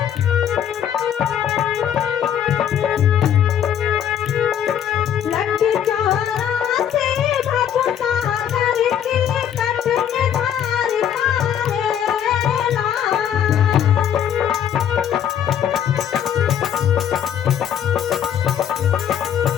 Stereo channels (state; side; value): quieter; right; 9.5 dB